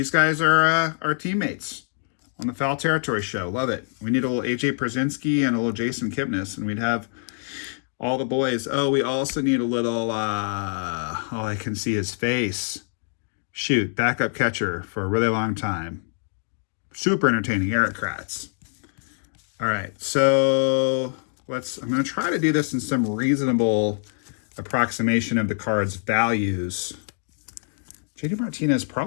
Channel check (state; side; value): silent; right; digital silence